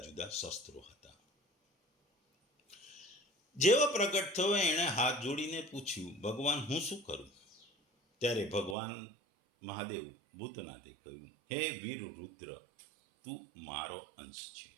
જુદા શસ્ત્રો હતા. જેવો પ્રગટ થયો એણે હાથ જોડીને પૂછ્યું, ભગવાન હું શું કરું? ત્યારે ભગવાન મહાદેવ ભૂતનાથે કહ્યું, હે વીર રુદ્ર, તું મારો અંશ છે,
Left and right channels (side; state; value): left; drops out; at 8.8 s